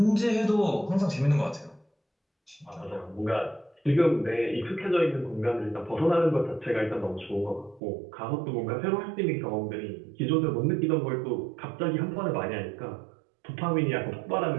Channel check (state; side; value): drops out; left; at 7.8 s